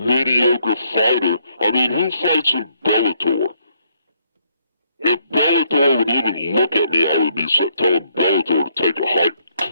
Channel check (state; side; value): inverted; both; correlation -0.70